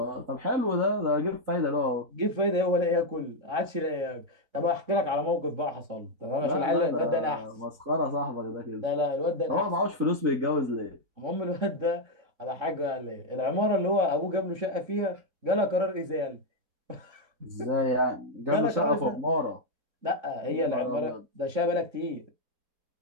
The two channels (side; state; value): left; late; 3.6 ms